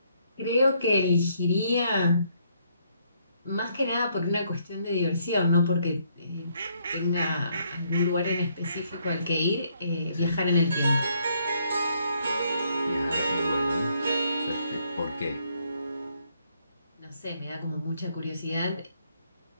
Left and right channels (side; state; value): both; inverted; correlation -0.70